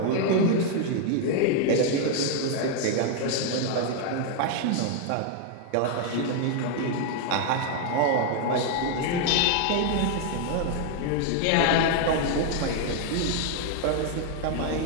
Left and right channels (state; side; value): different; both; correlation 0.00